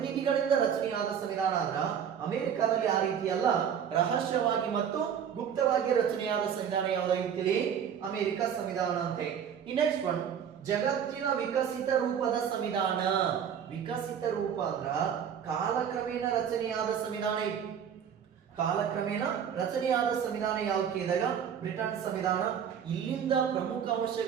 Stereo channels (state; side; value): quieter; left; 8.2 dB